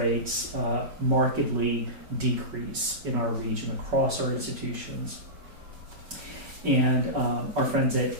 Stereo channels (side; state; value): left; late; 5.3 ms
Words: markedly decrease in our region across our institutions. And our friends